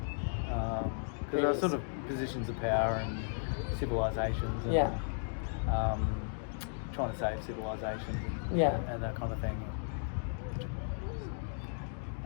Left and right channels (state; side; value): silent; right; digital silence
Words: because there are sort of positions of power and civilizations and trying to save civilizations and that kind of thing.